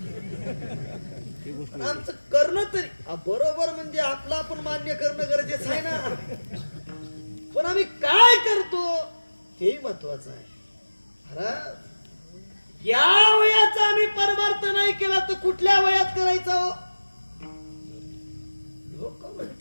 आमचं करणं तरी बरोबर, म्हणजे आपलं आपण मान्य करणं गरजेचं आहे ना, पण आम्ही काय करतो हे महत्वाचं आहे. महाराज, या वयाचा आम्ही परमार्थ नाही केला तर कुठल्या वयात करायचा हो? लोक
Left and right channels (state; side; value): inverted; both; correlation -1.00